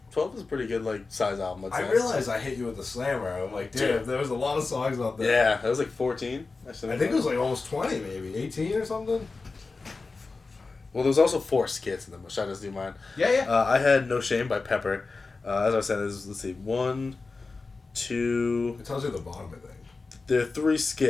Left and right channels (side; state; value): right; quieter; 3.9 dB